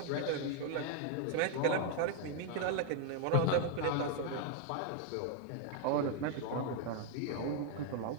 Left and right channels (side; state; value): both; different; correlation 0.00